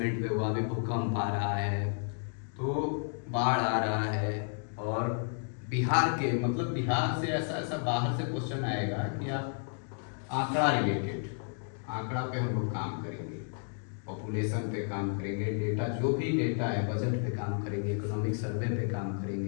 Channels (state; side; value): silent; right; 56 dB below the other